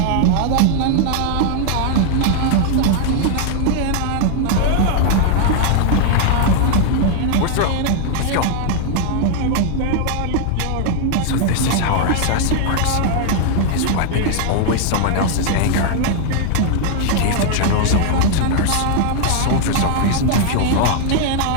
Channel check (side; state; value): both; different; correlation 0.00